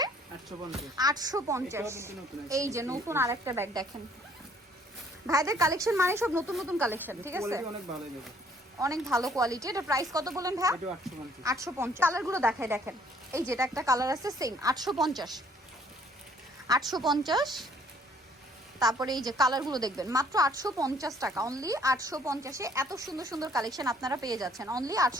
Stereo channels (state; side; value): normal; both; correlation 0.61